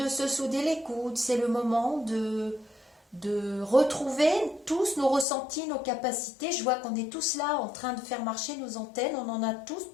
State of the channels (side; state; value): right; drops out; at 5.2 s